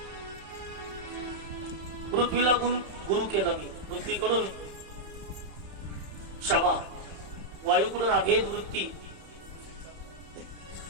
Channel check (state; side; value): late; left; 31 ms